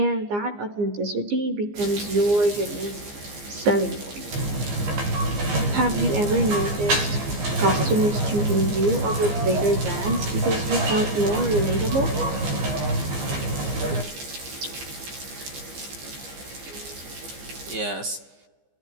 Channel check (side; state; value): left; late; 15 ms